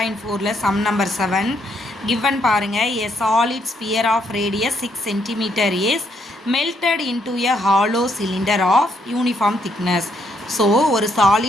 sum number 7 given பாருங்க a solid sphere of radius 6 cm is melted into a hollow cylinder of uniform thickness. So ஒரு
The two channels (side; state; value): both; normal; correlation 0.73